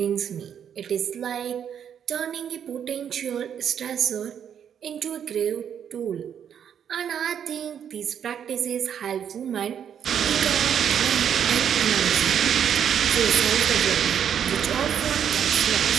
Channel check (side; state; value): left; quieter; 8.6 dB